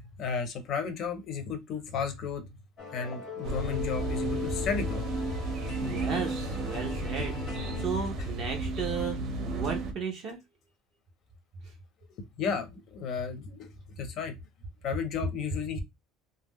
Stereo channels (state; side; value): normal; both; correlation 0.38